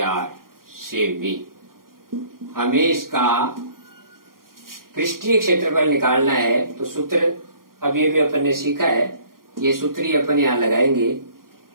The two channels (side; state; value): left; late; 0.91 ms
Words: सेमी। हमें इसका पृष्ठीय क्षेत्रफल निकालना है, तो सूत्र अभी भी अपन ने सीखा है, ये सूत्र ही अपन यहां लगाएंगे।